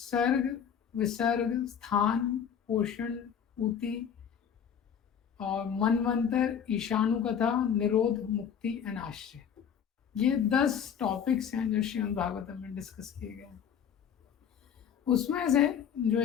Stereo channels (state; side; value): quieter; right; 8.1 dB